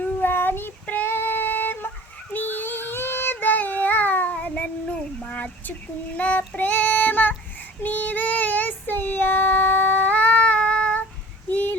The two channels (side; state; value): both; normal; correlation 0.44